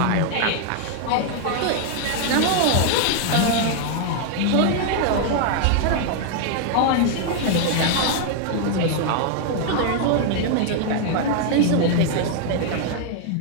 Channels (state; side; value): different; both; correlation 0.00